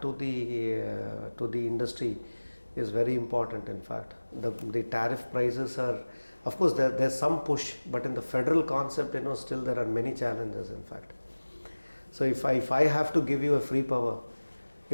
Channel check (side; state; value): both; inverted; correlation -1.00